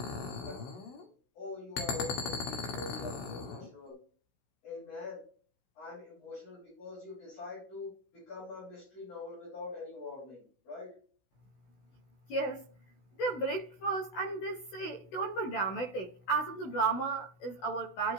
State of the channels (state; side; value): late; right; 16 ms